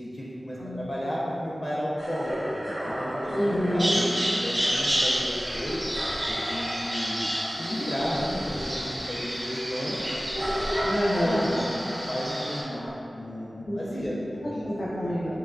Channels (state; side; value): normal; both; correlation 0.97